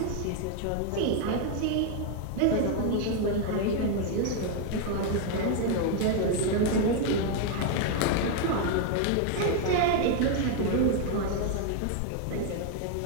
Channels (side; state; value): both; different; correlation 0.01